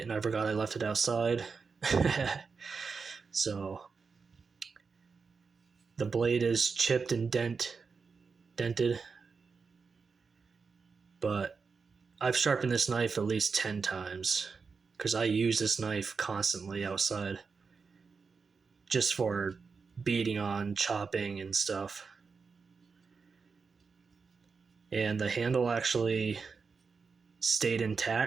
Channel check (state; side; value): quieter; left; 5.1 dB